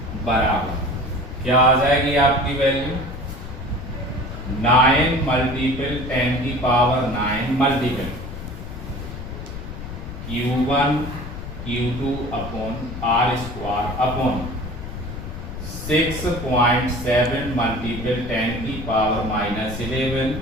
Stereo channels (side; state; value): left; noise; rumble, 9 dB below the sound